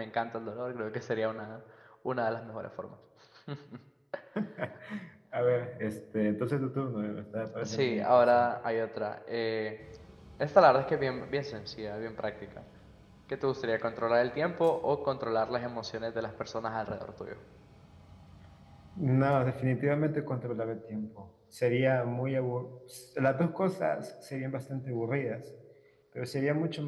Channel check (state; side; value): identical; both; correlation 1.00